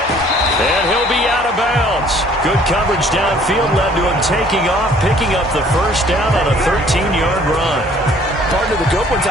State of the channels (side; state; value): both; normal; correlation 0.57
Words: And he'll be out of bounds. Good coverage downfield led to him taking off, picking up the 1st down on a 13-yard run. Partner, the good ones